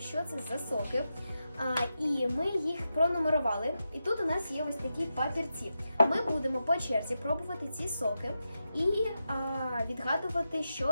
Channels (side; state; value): both; inverted; correlation -0.88